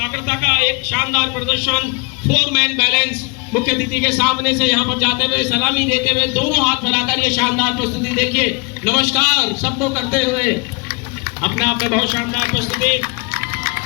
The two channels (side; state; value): right; quieter; 31.6 dB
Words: का एक शानदार प्रदर्शन। 4 मैन बैलेंस मुख्य अतिथि के सामने से यहाँ पर जाते हुए सलामी देते हुए दोनों हाथ फैलाकर ये शानदार प्रस्तुति देखिए, नमस्कार सबको करते हुए अपने आप में बहुत शानदार प्रस्तुति।